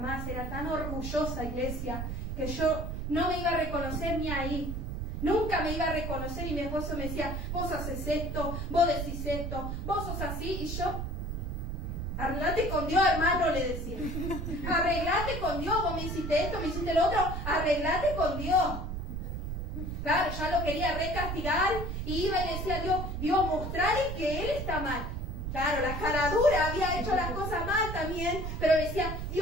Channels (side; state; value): right; noise; rumble, 4 dB below the sound